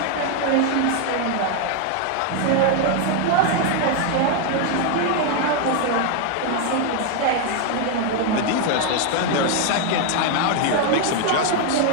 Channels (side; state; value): both; different; correlation 0.01